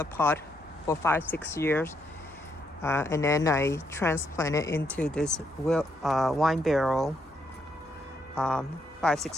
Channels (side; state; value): both; normal; correlation 0.76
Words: pot for 5-6 years, and then I transplanted into this wine barrel.